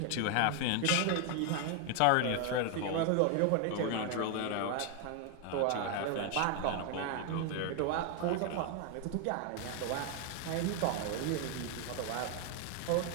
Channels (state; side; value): different; both; correlation 0.01